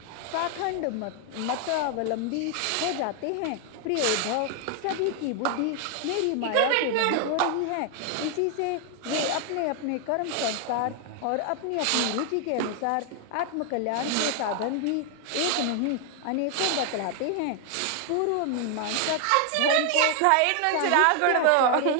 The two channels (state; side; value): different; both; correlation 0.00